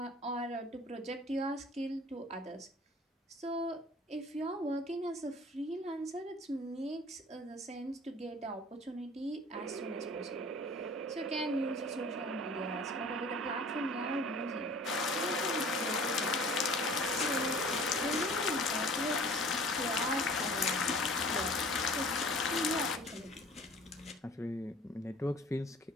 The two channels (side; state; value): both; normal; correlation 0.47